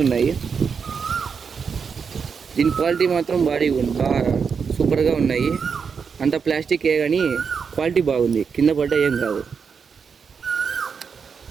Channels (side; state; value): left; quieter; 6.0 dB